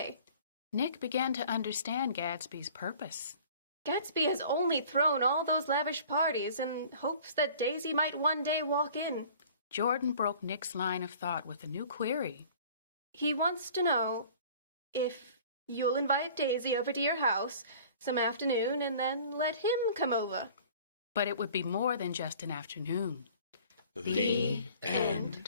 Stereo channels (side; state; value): both; inverted; correlation -0.48